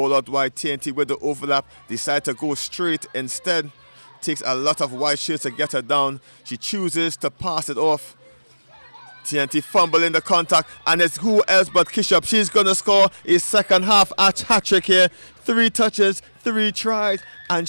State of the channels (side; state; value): both; inverted; correlation -1.00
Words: out wide. TNT with the overlap decide to go straight instead. Takes a lot of white shirts to get her down. She chooses to pass it off. TNT fumbling the contact, and it's who else but Kishop. She's going to score a second half hat-trick here. 3 touches, 3 tries, and